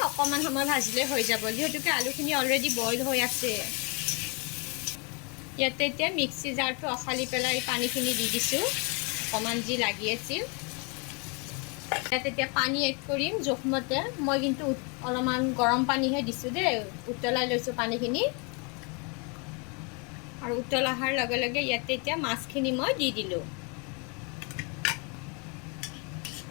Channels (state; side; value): quieter; right; 33.6 dB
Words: অকণমান সময় ভাজিলে হৈ যাব, যিহেতুকে আলুখিনি অলৰেডি বইল হৈ আছে। ইয়াতে এতিয়া মিক্সি জাৰটো অখালি পেলাই পানীখিনি দি দিছোঁ, অকণমান যি লাগি আছিল। ইয়াত এতিয়া পানী এড কৰিম জোখমতে। মই কিন্তু অলপমান গৰম পানীহে দিছোঁ দেই, উতলাই লৈছোঁ পানীখিনি। আৰু উতল অহাৰ লগে লগে ইয়াতে এতিয়া মাছখিনি মই দি দিলোঁ।